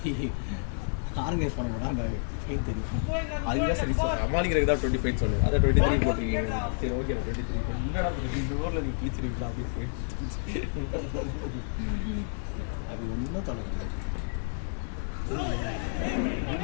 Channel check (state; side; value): silent; right; digital silence